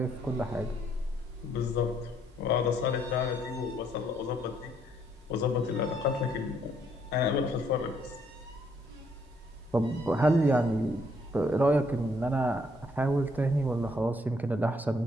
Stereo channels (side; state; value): both; normal; correlation 0.69